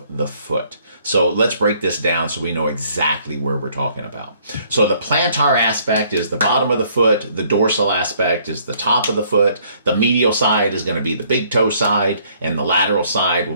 the foot. So let's break this down so we know exactly where we're talking about. So the plantar aspect is the bottom of the foot, the dorsal aspect is the top of the foot, the medial side is going to be the big toe side, and the lateral side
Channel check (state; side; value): inverted; both; correlation -0.63